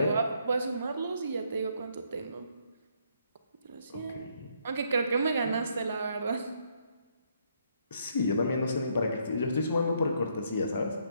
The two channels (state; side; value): inverted; both; correlation -0.71